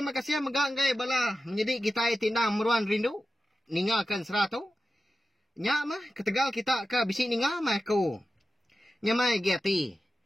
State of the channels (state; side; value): normal; both; correlation 0.93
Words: kasih megak ngai bala menjadi kitai tindang meruan rindu. Ninga kan ansara tu. Nyak mah ketegal kita ke besi ninga mah aku. Nyamai giati.